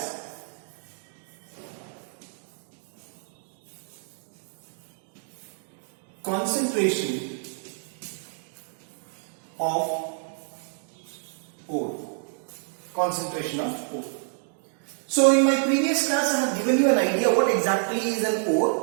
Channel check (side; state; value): left; silent; digital silence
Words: concentration of ore. Concentration of ore. So in my previous class I have given you an idea what exactly is an